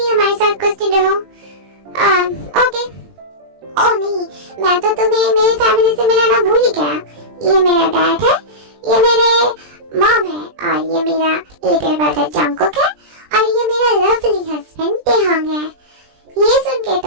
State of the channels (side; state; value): left; late; 20 ms